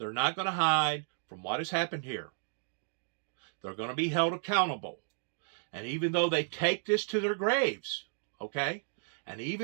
not going to hide from what has happened here. They're going to be held accountable. And even though they take this to their graves, okay, and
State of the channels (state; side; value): silent; left; digital silence